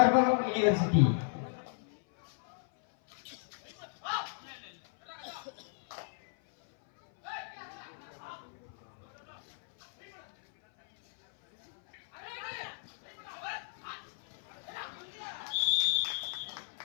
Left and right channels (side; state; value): right; silent; 55 dB below the other